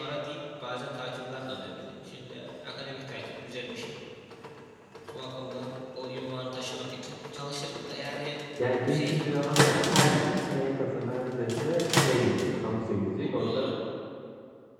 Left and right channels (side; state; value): both; identical; correlation 1.00